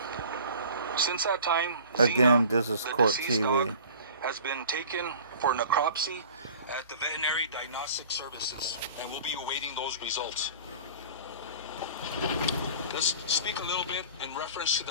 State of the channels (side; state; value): both; inverted; correlation -0.44